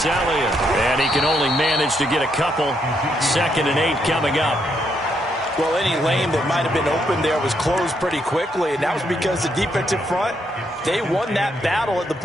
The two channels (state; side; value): normal; both; correlation 0.76